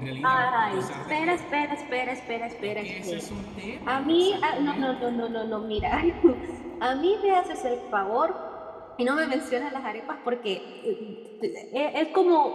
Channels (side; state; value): both; identical; correlation 1.00